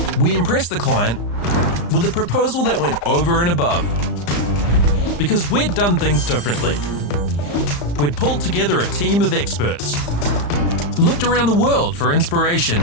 we impressed the client with a proposal that went over and above. Because we'd done things differently. We'd pulled together a team of experts, looked around the world for inspiration,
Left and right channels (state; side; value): late; right; 35 ms